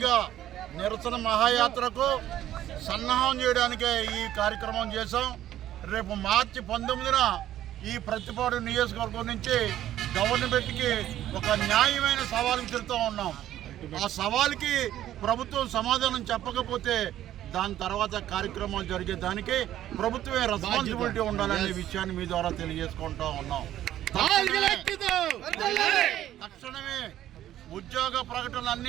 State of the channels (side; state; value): left; quieter; 12.5 dB